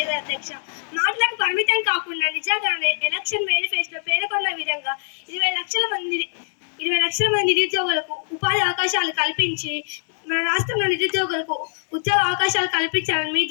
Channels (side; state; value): right; silent; 64 dB below the other